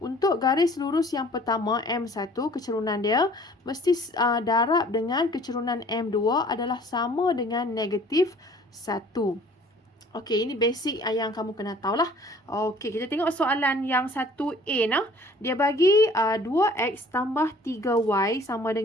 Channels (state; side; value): normal; both; correlation 0.53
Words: garis lurus yang pertama M1 kecerunan dia mesti darab dengan kecerunan M2 adalah sama dengan negatif 1. Okey, ini basic yang kamu kena tahulah. Okey, kita tengok soalan yang 1A nah. Dia bagi 2x tambah 3y sama